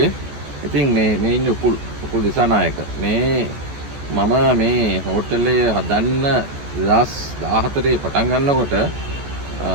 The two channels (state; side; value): late; left; 14 ms